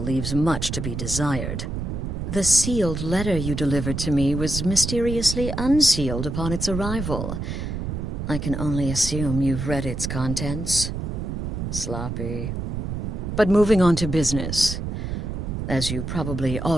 leaves much to be desired. The sealed letter you delivered to me was mysteriously unsealed upon its arrival. I can only assume you've read its contents. Sloppy. But moving on to business. As you probably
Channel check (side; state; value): right; noise; rumble, 4 dB below the sound